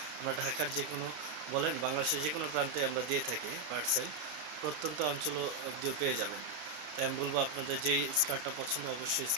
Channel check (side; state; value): left; late; 33 ms